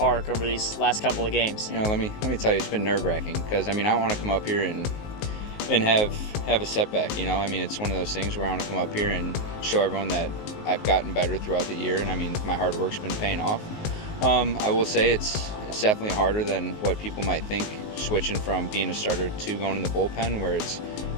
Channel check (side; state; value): right; late; 19 ms